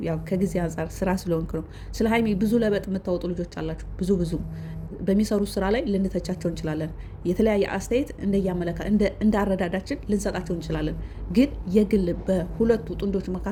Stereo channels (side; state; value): both; identical; correlation 1.00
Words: ያው ከጊዜ አንጻር ስራ ስለሆንክ ነው። ስለ ሀይሚ ብዙ ለበጥ የምታወጡ ልጆች አላችሁ። ብዙ በሚሰሩት ስራ ላይ ልንተቻቸው እንችላለን። የተለያየ አስተያየት እንዳረዳዳችን ልንሰጣቸው እንችላለን። ግን የግል በሁለቱ ጥንዶች